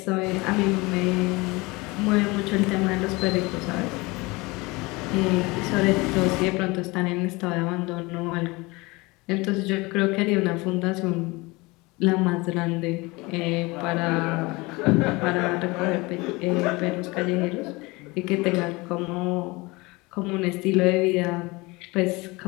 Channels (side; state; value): right; quieter; 23.8 dB